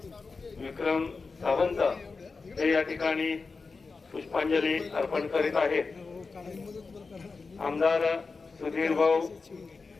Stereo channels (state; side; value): quieter; right; 4.4 dB